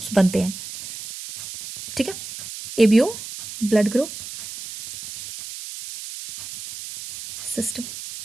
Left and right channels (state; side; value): noise; right; hiss, 11 dB below the sound